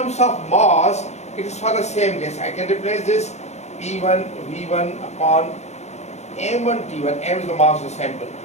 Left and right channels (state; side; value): late; right; 0.32 ms